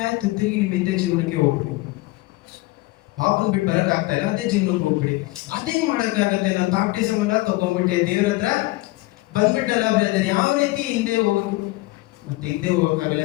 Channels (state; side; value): quieter; right; 20.5 dB